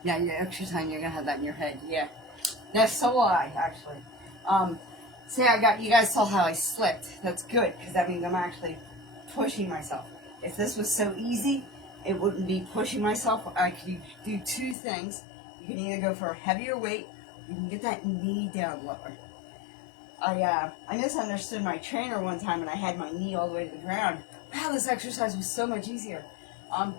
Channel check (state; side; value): drops out; right; at 14.8 s